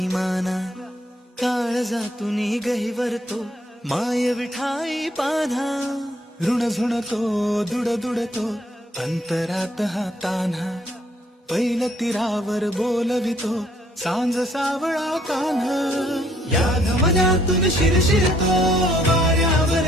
माना काळजातून गहिवरतो माय विठाई पान्हा ऋण झुणतो दुड दुडतो अंतरात हा तान्हा पैल तीरावर बोलवितो सांज सावळा कान्हा या धमन्यातून शिरशिरतो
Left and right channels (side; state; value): both; normal; correlation 0.66